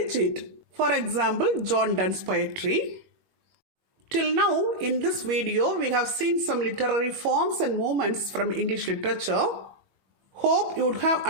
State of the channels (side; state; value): left; late; 21 ms